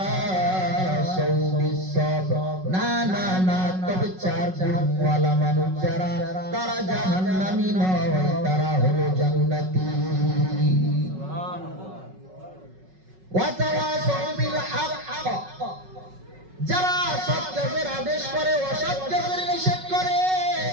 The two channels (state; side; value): late; left; 5.4 ms